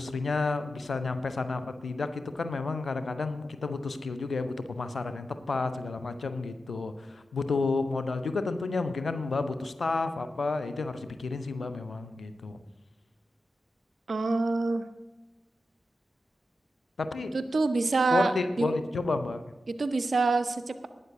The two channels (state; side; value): normal; both; correlation 0.90